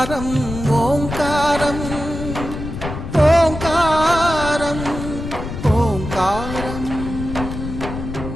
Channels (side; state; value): left; noise; rumble, 7 dB below the sound